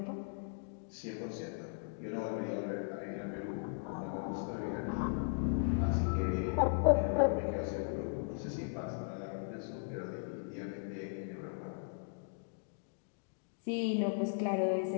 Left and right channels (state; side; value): silent; right; digital silence